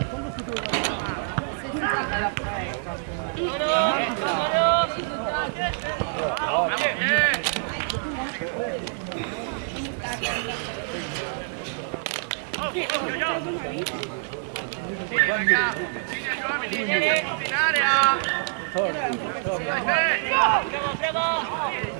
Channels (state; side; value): silent; left; digital silence